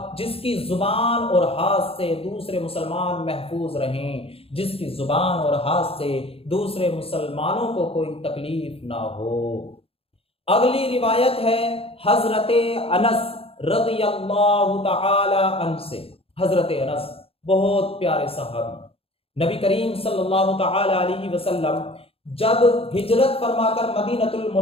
جس کی زبان اور ہاتھ سے دوسرے مسلمان محفوظ رہیں، جس کی زبان اور ہاتھ سے دوسرے مسلمانوں کو کوئی تکلیف نہ ہو۔ اگلی روایت ہے حضرت انس رضی اللہ تعالی عنہ سے۔ حضرت انس بہت پیارے صحابی، نبی کریم صلی اللہ تعالی علیہ وسلم جب ہجرت فرما کر مدینۃ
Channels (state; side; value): late; right; 0.28 ms